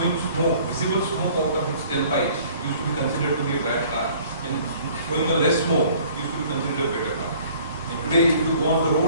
smoke, visible smoke out of its tailpipe, used to be considered to be a bad car, and throwing a less smoke used to be considered a better car. And today, if you go on the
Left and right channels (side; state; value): both; inverted; correlation -0.53